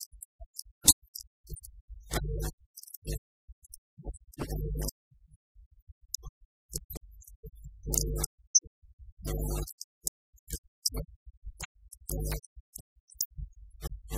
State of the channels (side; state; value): both; identical; correlation 1.00